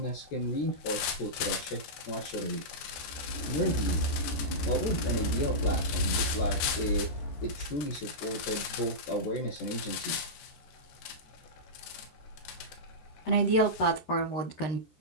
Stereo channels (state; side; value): late; right; 14 ms